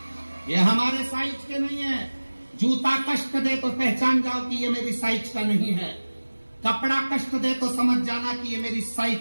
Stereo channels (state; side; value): inverted; both; correlation -1.00